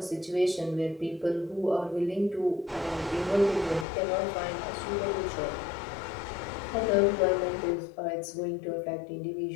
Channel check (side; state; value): right; drops out; at 3.9 s